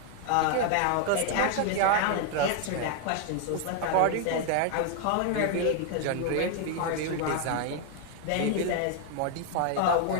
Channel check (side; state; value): both; different; correlation 0.00